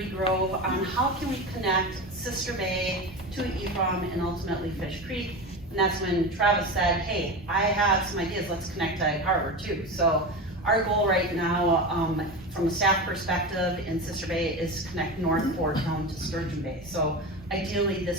Grove, on how can we connect Sister Bay to Ephraim and ultimately Fish Creek. And that's when Travis said, hey, I have some ideas, let's connect to Egg Harbor too. So our goal right now, from a staff perspective in Sister Bay, is to connect North Fork down to Sturgeon Bay. So ideally,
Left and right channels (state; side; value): normal; both; correlation 0.24